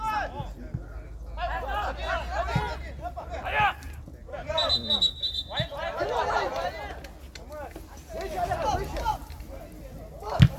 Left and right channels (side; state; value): both; identical; correlation 1.00